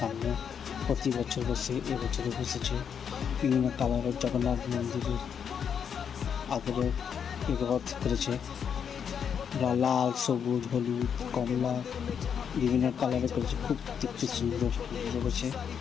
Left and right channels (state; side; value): quieter; right; 7.5 dB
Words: প্রতি বছর বসে, এবছরও বসেছে। বিভিন্ন কালারের জগন্নাথ মন্দিরের আদলে রথ করেছে, লাল, সবুজ, হলুদ, কমলা, বিভিন্ন কালারে করেছে। খুব দেখতে সুন্দর লেগেছে।